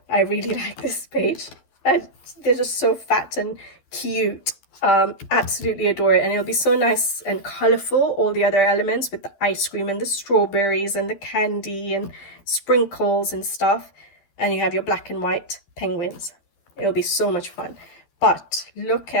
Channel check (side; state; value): right; late; 12 ms